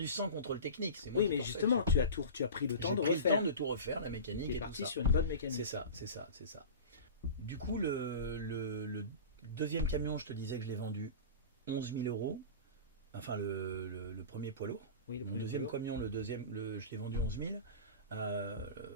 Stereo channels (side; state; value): both; inverted; correlation -0.32